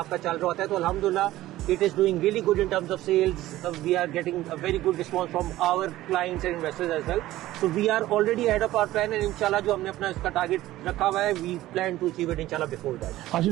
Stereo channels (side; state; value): left; quieter; 15.7 dB